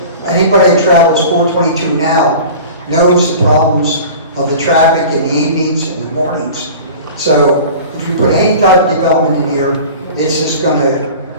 Anybody that travels 422 now knows the problems of the traffic in the evenings and the mornings. So if you put any type of development in here, it's just going to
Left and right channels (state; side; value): inverted; both; correlation -0.39